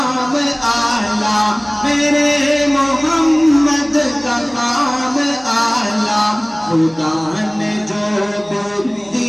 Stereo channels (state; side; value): noise; right; hum, 27 dB below the sound